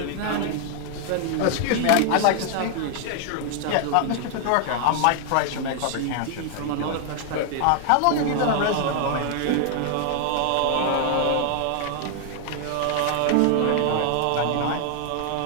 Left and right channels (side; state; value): both; different; correlation 0.00